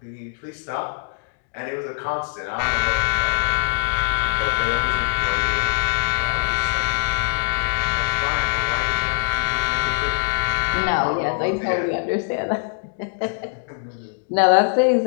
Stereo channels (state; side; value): silent; right; digital silence